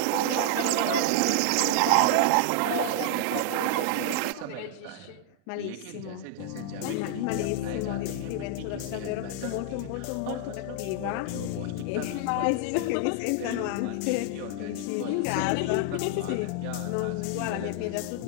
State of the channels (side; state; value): both; different; correlation 0.00